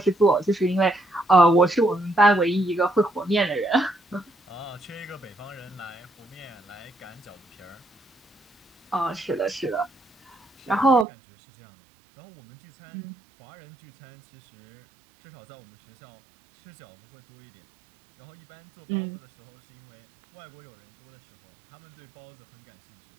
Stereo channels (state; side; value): drops out; left; at 11.1 s